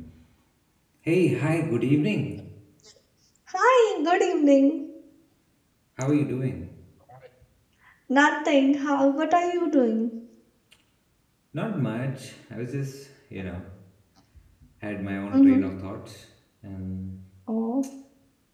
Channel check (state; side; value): identical; both; correlation 1.00